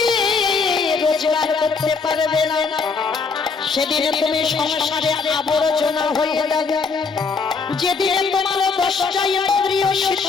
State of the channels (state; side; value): quieter; right; 4.9 dB